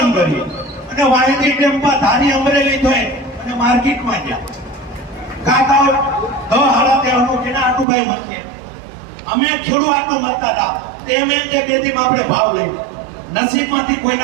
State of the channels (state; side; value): drops out; left; at 7.9 s